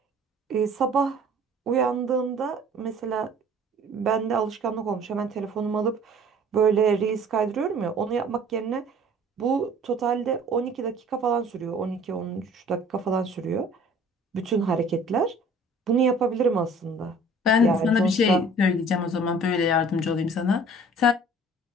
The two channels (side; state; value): both; normal; correlation 0.50